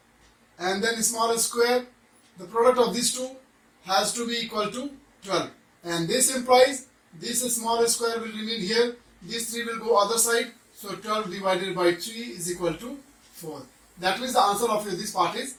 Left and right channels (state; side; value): identical; both; correlation 1.00